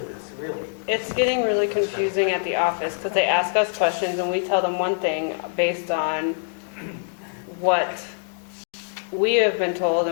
this, really. it's getting really confusing at the office because they ask us questions and we tell them one thing based on what we have been told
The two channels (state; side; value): silent; right; digital silence